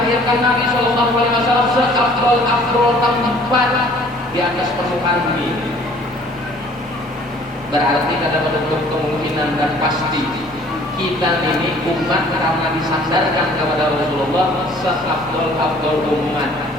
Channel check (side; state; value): both; normal; correlation 0.54